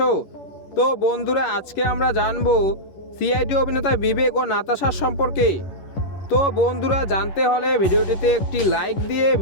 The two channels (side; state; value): right; late; 11 ms